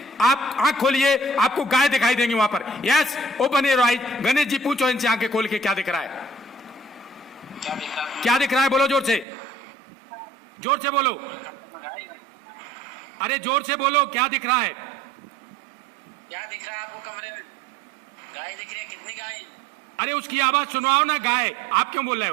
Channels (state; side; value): drops out; left; at 9.2 s